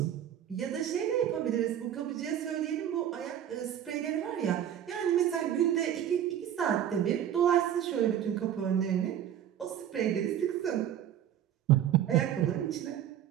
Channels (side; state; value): left; quieter; 10.4 dB